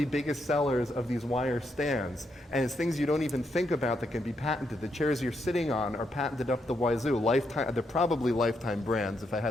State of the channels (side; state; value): both; normal; correlation 0.79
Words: biggest sellers of these wire stands. And it's things you don't even think about that can be patented. The chairs you're sitting on are patented up the wazoo. Lifetime, they're probably Lifetime brands, if I